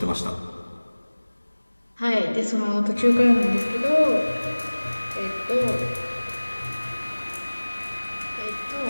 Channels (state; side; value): inverted; both; correlation -1.00